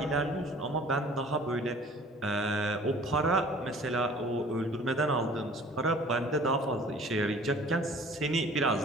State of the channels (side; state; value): both; normal; correlation 0.49